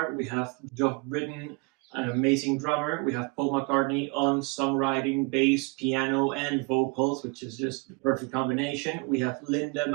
We have Geoff Britton, an amazing drummer. We have Paul McCartney on songwriting, bass, piano, and vocals, which is just the perfect combination. We have Linda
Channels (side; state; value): left; quieter; 30.4 dB